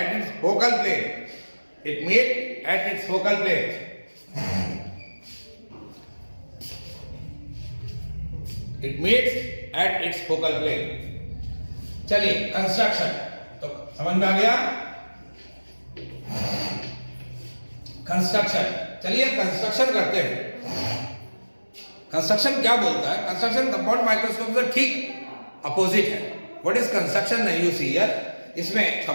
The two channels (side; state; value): both; inverted; correlation -1.00